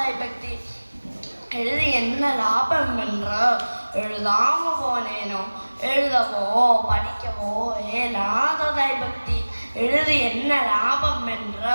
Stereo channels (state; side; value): inverted; both; correlation -1.00